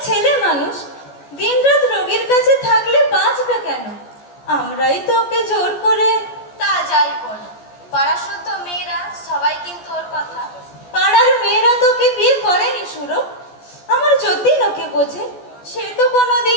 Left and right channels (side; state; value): right; late; 14 ms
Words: ছেলে মানুষ, দিনরাত রোগীর কাছে থাকলে বাঁচবে কেন? আমরাই তো ওকে জোর করে। তা যাই বলো, পাড়া শুদ্ধ মেয়েরা সবাই কিন্তু ওর কথা। পাড়ার মেয়েরা তোকে বিয়ে করেনি সুরো। আমার যতীন ওকে বোঝে, সে তো